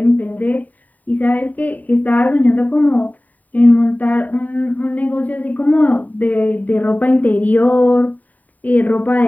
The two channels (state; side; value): late; right; 0.077 ms